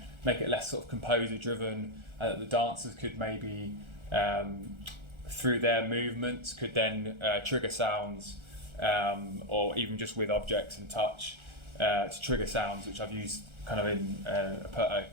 make it less sort of composer driven, and that the dancers could maybe through their movements could then trigger sounds, or even just with objects and touch to trigger sounds, which I've used kind of in a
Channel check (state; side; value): late; left; 1.4 ms